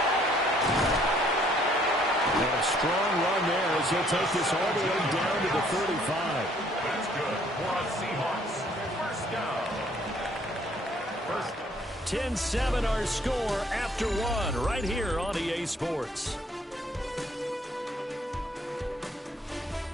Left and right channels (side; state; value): both; normal; correlation 0.62